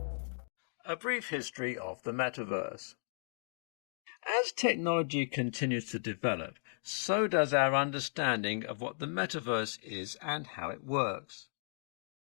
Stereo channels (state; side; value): silent; right; digital silence